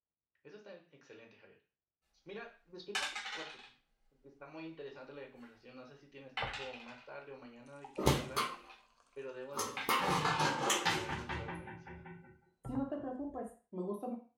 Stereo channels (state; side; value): identical; both; correlation 1.00